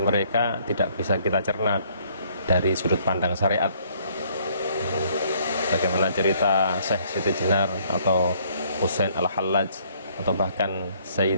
tidak bisa kita cerna dari sudut pandang syariat. Bagaimana cerita Syekh Siti Jenar atau Husain Al-Hallaj atau bahkan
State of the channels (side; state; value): both; inverted; correlation -0.63